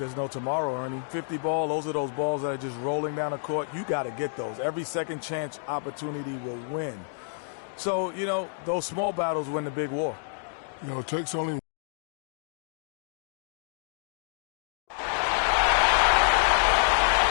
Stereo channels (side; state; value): right; silent; digital silence